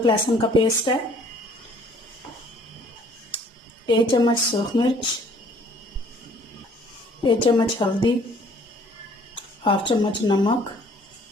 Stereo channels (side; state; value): both; normal; correlation 0.58